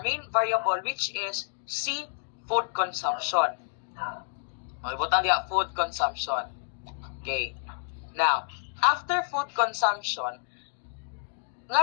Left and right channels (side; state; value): right; silent; digital silence